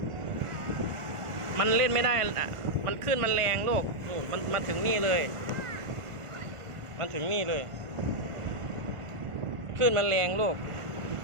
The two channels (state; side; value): late; left; 1.5 ms